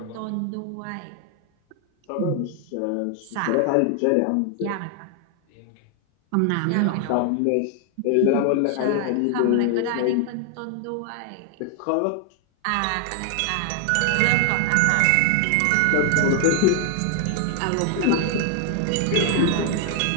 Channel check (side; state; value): both; different; correlation 0.00